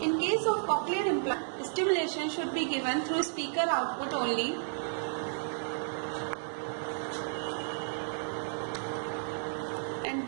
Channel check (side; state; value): left; silent; digital silence